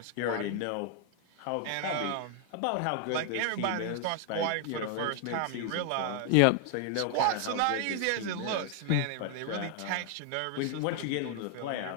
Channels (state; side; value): different; both; correlation 0.00